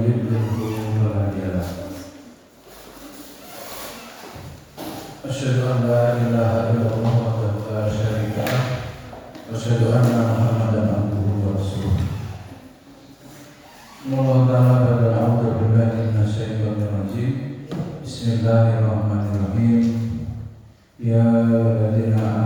yudlilhu fala hadiya lahu. Asyhadu an la ilaha illallah wahdahu la syarika lah wa asyhadu anna Muhammadan abduhu wa rasuluh. Bismillahirrahmanirrahim. Ya ayyuhalladzina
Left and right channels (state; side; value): identical; both; correlation 1.00